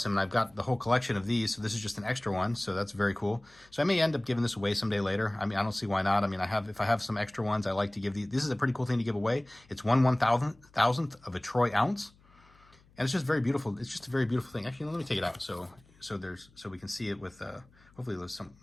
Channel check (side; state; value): left; noise; hum, 29 dB below the sound